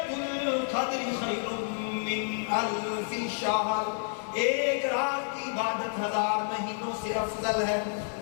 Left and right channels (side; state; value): right; silent; 58 dB below the other